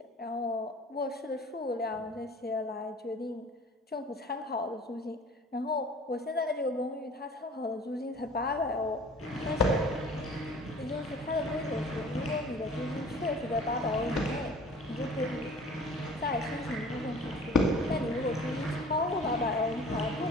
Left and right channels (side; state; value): both; normal; correlation 0.47